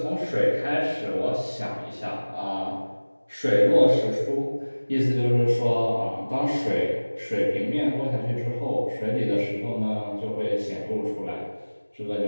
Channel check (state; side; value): inverted; both; correlation -1.00